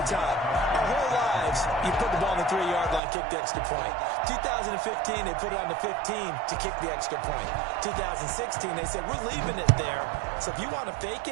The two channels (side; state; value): left; drops out; at 3.0 s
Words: time. Our whole lives, you put the ball on the 3-yard line, kick the extra point. 2015, they put it on the 15 to kick the extra point. 2016, they said, we're leaving it there. So if you want to fake